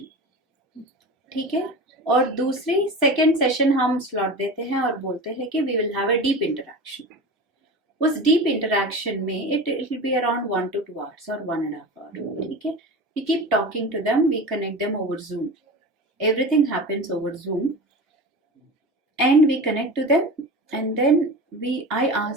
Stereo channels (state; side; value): normal; both; correlation 0.30